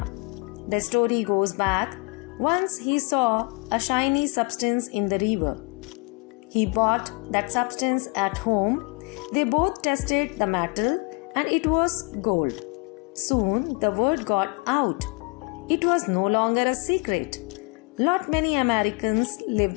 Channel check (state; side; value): quieter; right; 30.4 dB